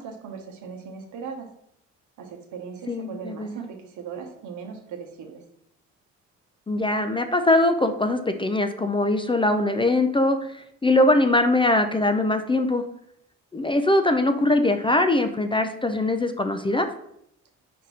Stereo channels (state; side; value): normal; both; correlation 0.45